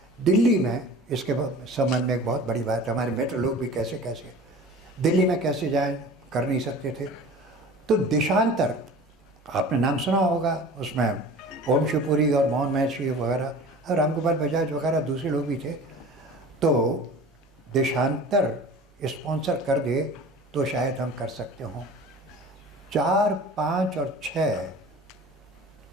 दिल्ली में। इसके संबंध में एक बहुत बड़ी बात है, हमारे मित्र लोग भी कैसे दिल्ली में कैसे जाएं, कर नहीं सकते थे। तो देशांतर आपने नाम सुना होगा, उसमें ओम शिवपुरी और मोहन महर्षि वगैरह, रामगोपाल बजाज वगैरह दूसरे लोग भी थे। तो देशांतर स्पॉन्सर कर दे तो शायद हम कर सकते हों। 4, 5 और 6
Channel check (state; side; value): normal; both; correlation 0.40